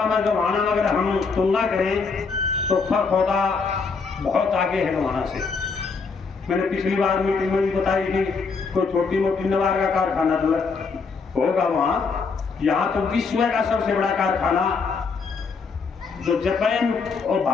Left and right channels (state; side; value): quieter; right; 4.9 dB